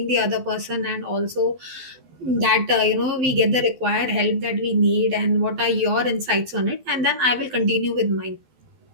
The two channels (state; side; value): late; left; 12 ms